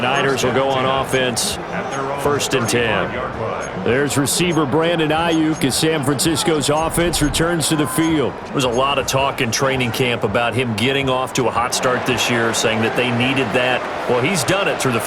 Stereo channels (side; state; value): both; identical; correlation 1.00